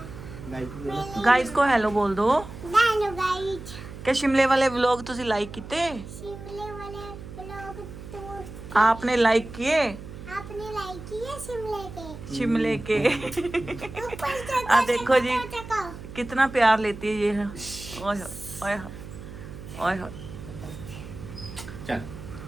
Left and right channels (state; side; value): noise; right; hum, 13 dB below the sound